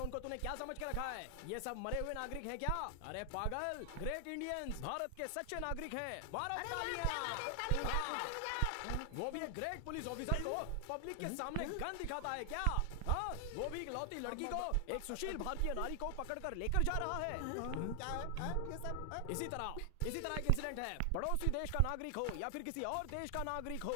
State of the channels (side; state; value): both; different; correlation 0.00